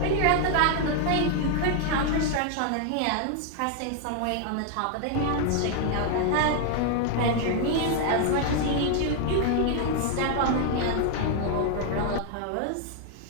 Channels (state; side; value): different; both; correlation 0.00